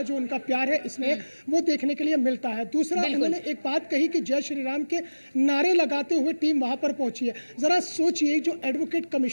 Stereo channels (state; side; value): inverted; both; correlation -1.00